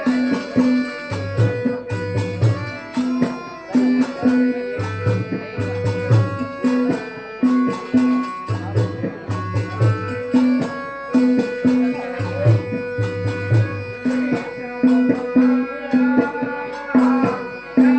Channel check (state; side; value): identical; both; correlation 1.00